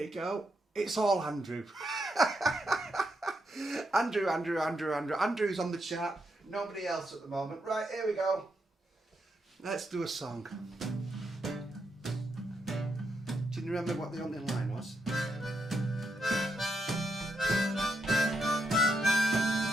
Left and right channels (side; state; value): both; normal; correlation 0.81